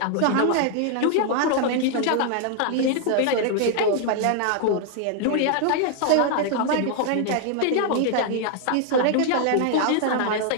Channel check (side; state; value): both; different; correlation 0.00